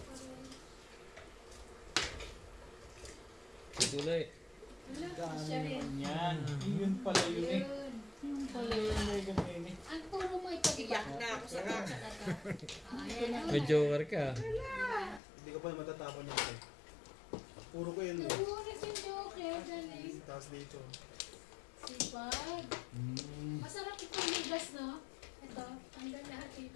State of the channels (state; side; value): drops out; right; at 15.2 s